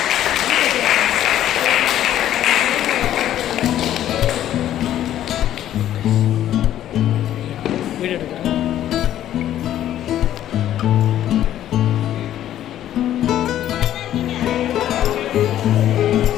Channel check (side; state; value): right; quieter; 11.9 dB